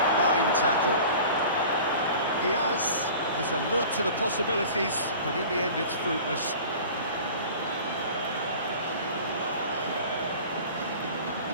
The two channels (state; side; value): inverted; both; correlation -0.41